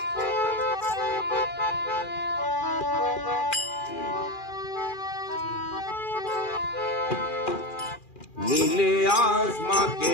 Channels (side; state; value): right; late; 2.4 ms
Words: नीले आसमां के